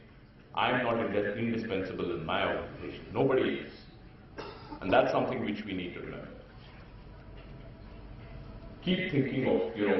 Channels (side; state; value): both; identical; correlation 1.00